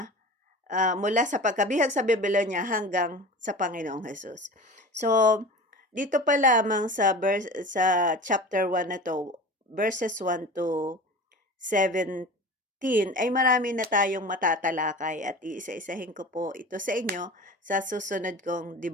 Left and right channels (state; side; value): normal; both; correlation 0.35